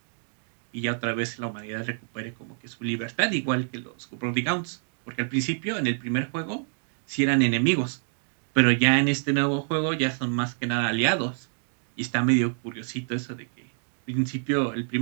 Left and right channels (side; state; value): left; silent; digital silence